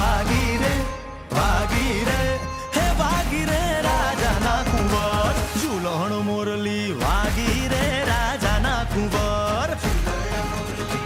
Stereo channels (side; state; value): both; identical; correlation 1.00